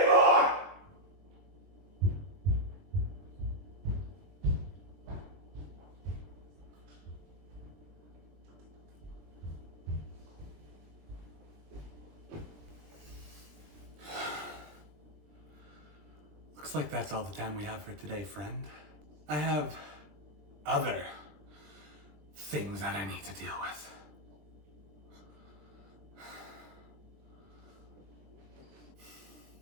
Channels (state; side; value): late; left; 20 ms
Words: Looks like that's all the time we have for today, friend. I have other things that I need to deal with.